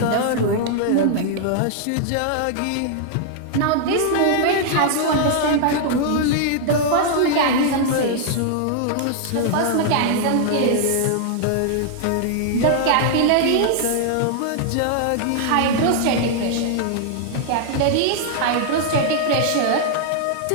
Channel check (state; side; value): different; both; correlation -0.01